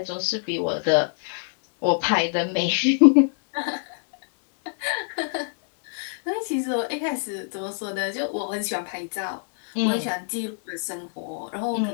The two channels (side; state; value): right; silent; 61 dB below the other